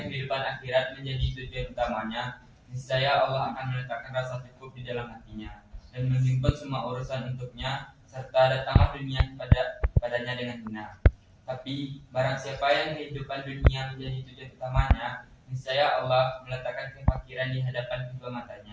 kehidupan akhirat menjadi tujuan utamanya, niscaya Allah akan meletakkan rasa cukup di dalam hatinya dan menghimpun semua urusan untuknya, serta datanglah dunia padanya dengan benar. Tapi barang siapa yang kehidupan dunia menjadi tujuan utamanya, niscaya Allah meletakkan kefakiran di hadapan kedua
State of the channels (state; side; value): identical; both; correlation 1.00